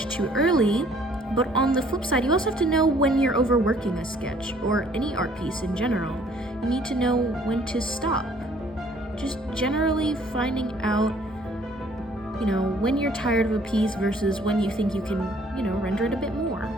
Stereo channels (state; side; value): normal; both; correlation 0.59